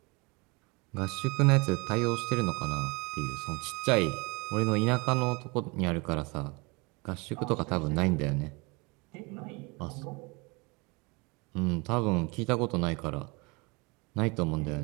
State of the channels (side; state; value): left; quieter; 27.7 dB